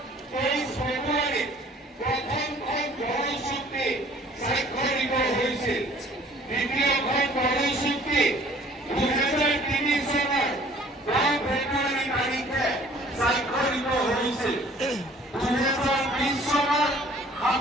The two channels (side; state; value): both; normal; correlation 0.54